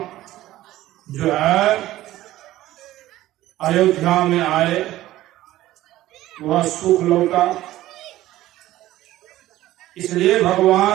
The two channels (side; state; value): left; quieter; 15.2 dB